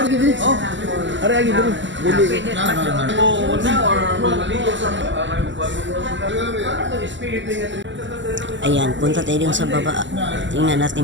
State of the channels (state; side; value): late; left; 0.54 ms